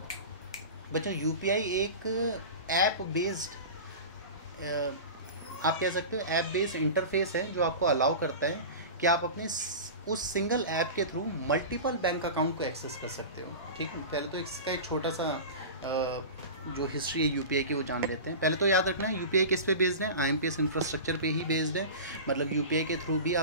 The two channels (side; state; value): both; inverted; correlation -0.30